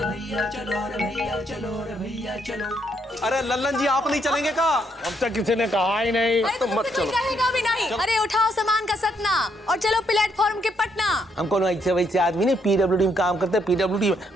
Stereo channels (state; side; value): normal; both; correlation 0.74